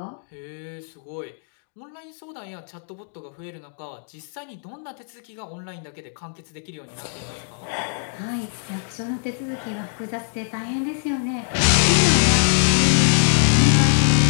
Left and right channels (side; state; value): right; silent; digital silence